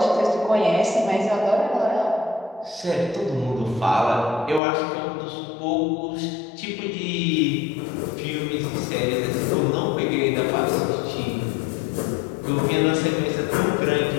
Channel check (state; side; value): drops out; right; at 4.6 s